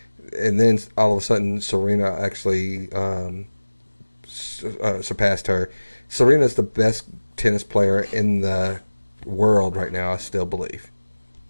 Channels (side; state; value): both; inverted; correlation -1.00